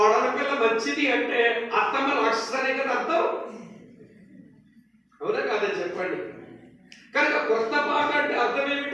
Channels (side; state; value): both; identical; correlation 1.00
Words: పిల్ల మంచిది అంటే అత్తమ్మ రాక్షసనే కదా అర్థం. అవునా కాదని చెప్పండి. కనుక కొత్త పాట అంటే అర్థం